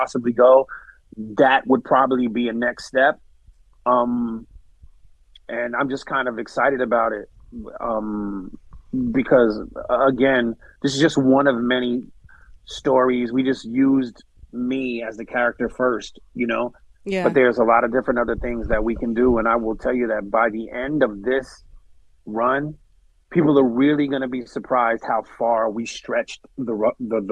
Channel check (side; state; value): both; identical; correlation 1.00